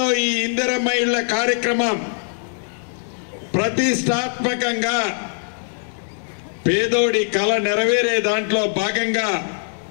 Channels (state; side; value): silent; right; digital silence